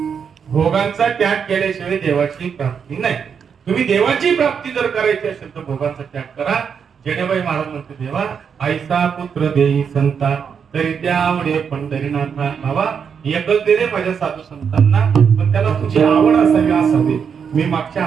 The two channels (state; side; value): quieter; left; 6.9 dB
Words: भोगांचा त्याग केल्याशिवाय देवाची प्राप्ती नाही. तुम्ही देवाची प्राप्ती जर करायची असेल तर भोगांचा त्याग करा. जेणेबाई महाराज म्हणते देवा आईचा पुत्र देई संता तरी त्या आवडे पंढरीनाथा. बाबा एकच दे रे माझ्या साधू संतांना पण त्याला तुझी आवड असावी असावी. मी मागच्या